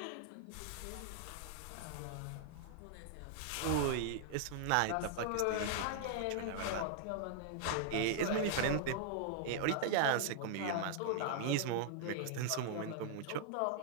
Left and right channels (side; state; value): both; different; correlation -0.01